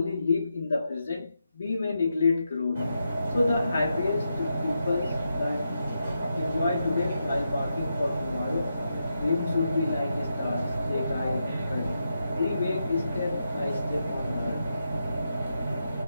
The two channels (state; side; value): inverted; both; correlation -0.85